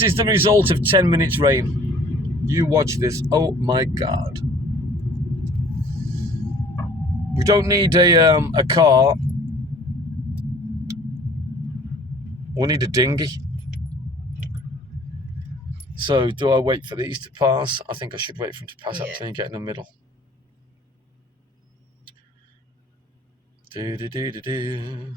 is the result of 10 minutes rain. You watch this. Oh, my God. We don't need a car. We need a dinghy. So do I wait for these to pass? I think I should wait for them to pass up till you get in the middle.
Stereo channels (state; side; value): normal; both; correlation 0.51